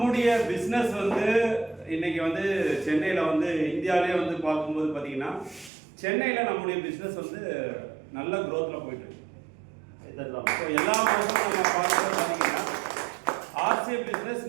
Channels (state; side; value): drops out; left; at 5.7 s